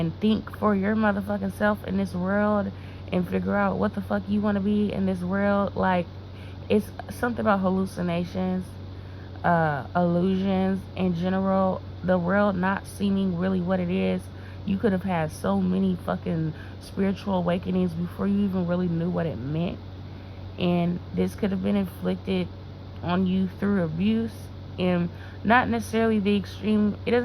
think for your motherfucking self in this world and figure out what the fuck you want to be in this world? Like, it's something about hallucinations, illusions in general, the world not seeming really what it is. You could have had so many fucking spiritual awakenings before you even really knew what it meant. And this could have been inflicted on you through abuse, and not necessarily the extreme. It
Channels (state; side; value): identical; both; correlation 1.00